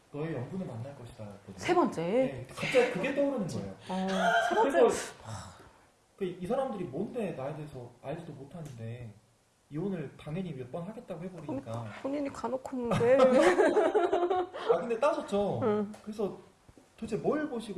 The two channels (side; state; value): both; identical; correlation 1.00